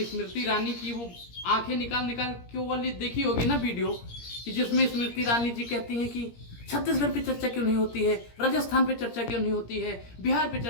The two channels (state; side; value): late; right; 17 ms